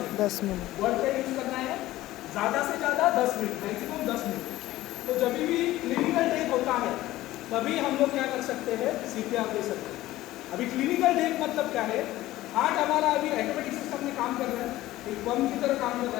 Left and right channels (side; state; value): right; quieter; 16.1 dB